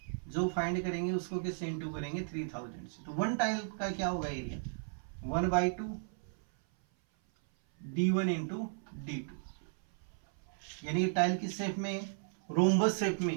जो फाइंड करेंगे उसको किससे इंटू करेंगे 3000 से। तो 1 टाइल का क्या होगा एरिया 1/2 d1 इंटू d2, यानी टाइल किस शेप में है, रोम्बस शेप में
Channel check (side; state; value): left; silent; 54 dB below the other